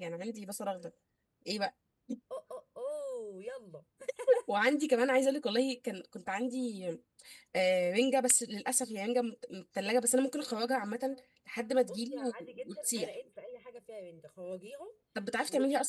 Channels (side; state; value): both; identical; correlation 1.00